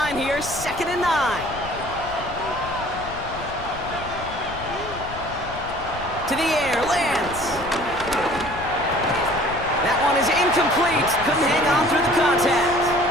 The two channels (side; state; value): left; noise; rumble, 13 dB below the sound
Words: here, 2nd and 9. To the air, lands. That one is incomplete. Couldn't hang on through the contact.